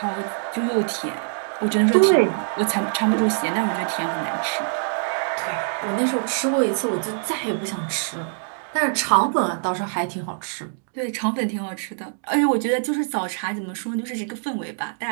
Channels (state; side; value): silent; left; digital silence